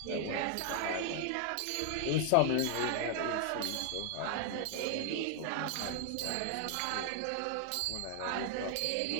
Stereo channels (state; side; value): different; both; correlation 0.00